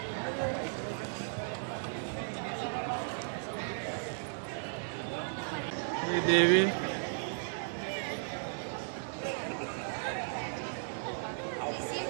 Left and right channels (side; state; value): left; silent; digital silence